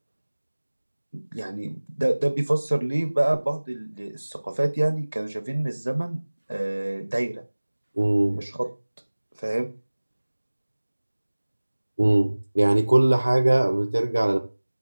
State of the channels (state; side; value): inverted; both; correlation -1.00